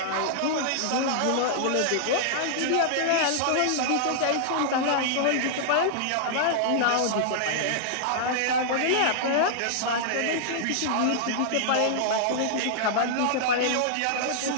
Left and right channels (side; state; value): both; different; correlation -0.01